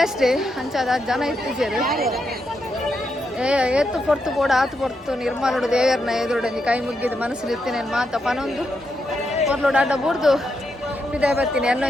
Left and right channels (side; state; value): both; normal; correlation 0.82